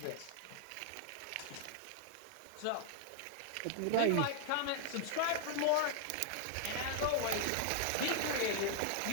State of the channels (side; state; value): both; different; correlation -0.01